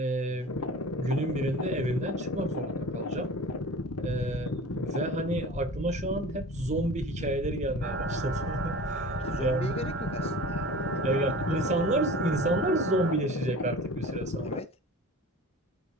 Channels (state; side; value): normal; both; correlation 0.39